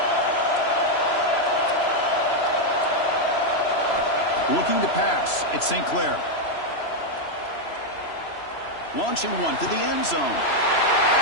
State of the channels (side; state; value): right; late; 3.0 ms